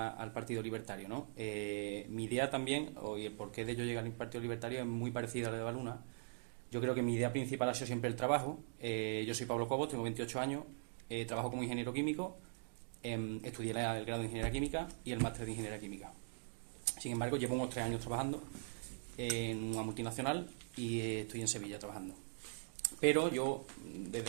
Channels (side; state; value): left; silent; digital silence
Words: Partido Libertario, ¿no? Mi idea también, y el por qué de yo llegar al Partido Libertario es muy parecida a la de Evaluna. Yo creo que mi idea principal ha sido siempre el trabajo. Yo soy Pablo Cobos, tengo 28 años, trabajo como ingeniero químico, estudié el grado de Ingeniería Química y el máster de Ingeniería Química. Sin embargo, llevo unos 3 años trabajando en una multinacional y estoy en Sevilla trabajando. Pero yo,